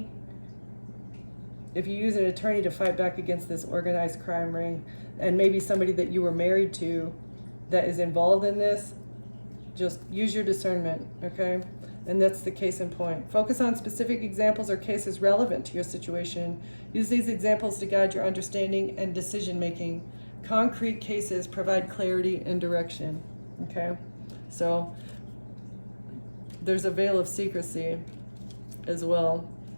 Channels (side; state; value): both; inverted; correlation -1.00